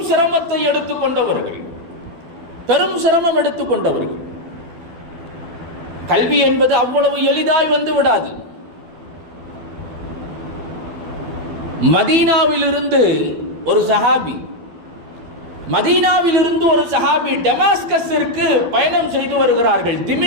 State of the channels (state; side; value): late; left; 12 ms